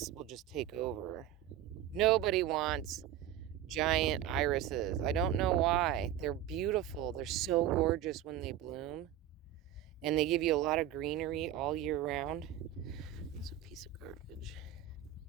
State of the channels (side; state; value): left; quieter; 11.5 dB